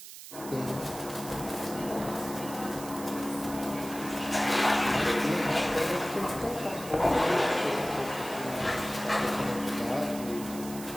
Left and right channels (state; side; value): noise; right; hiss, 13 dB below the sound